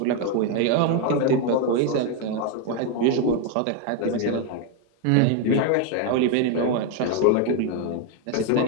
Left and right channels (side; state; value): both; different; correlation 0.01